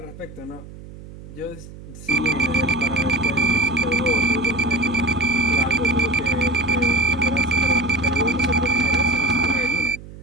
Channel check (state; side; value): noise; right; hum, 16 dB below the sound